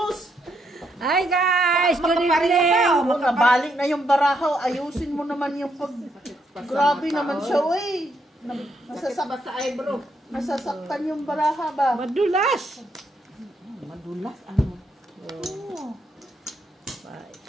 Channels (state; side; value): normal; both; correlation 0.76